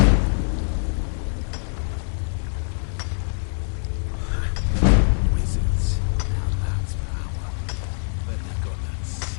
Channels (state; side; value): silent; right; digital silence